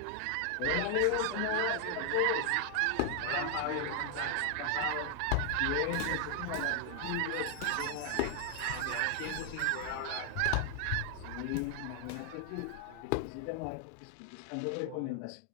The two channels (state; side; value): different; both; correlation 0.00